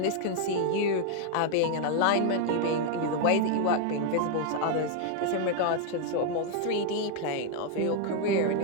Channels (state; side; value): different; both; correlation 0.00